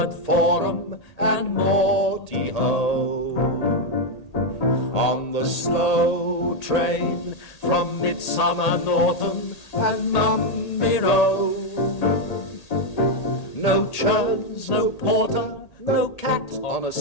Forum and Morty Ho. On the slow train from Midsummer Norton and Mumby Road. No churns, no porter, no cat on a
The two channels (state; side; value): late; right; 1.8 ms